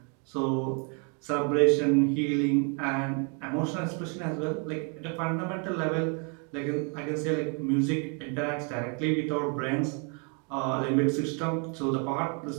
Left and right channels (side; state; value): left; quieter; 36.6 dB